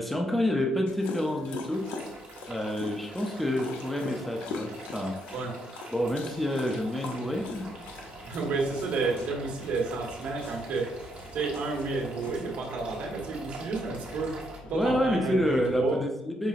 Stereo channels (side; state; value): both; normal; correlation 0.77